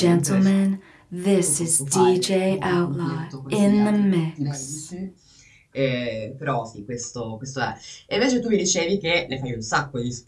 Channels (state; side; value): identical; both; correlation 1.00